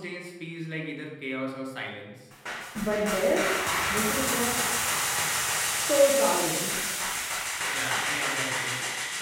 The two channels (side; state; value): both; identical; correlation 1.00